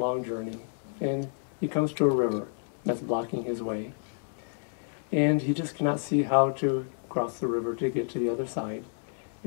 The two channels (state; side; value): silent; right; 58 dB below the other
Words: journey, and he comes to a river that's blocking his way. And he just cannot see how to cross the river to get to the other side.